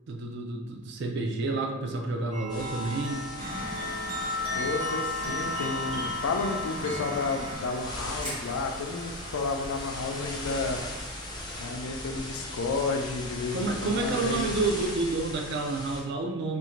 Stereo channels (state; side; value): normal; both; correlation 0.17